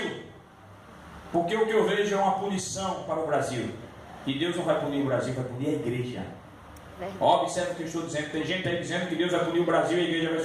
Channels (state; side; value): identical; both; correlation 1.00